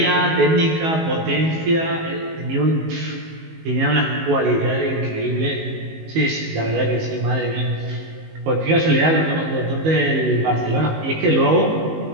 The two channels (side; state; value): left; late; 19 ms